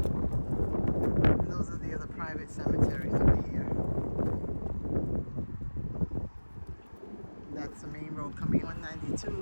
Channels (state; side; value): inverted; both; correlation -1.00